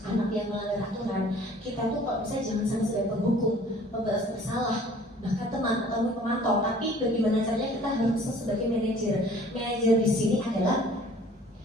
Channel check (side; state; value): both; normal; correlation 0.52